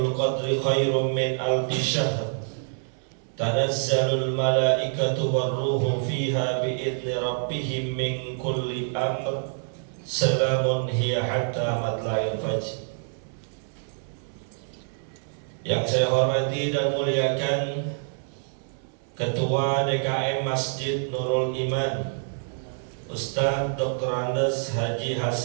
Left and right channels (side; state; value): left; silent; 61 dB below the other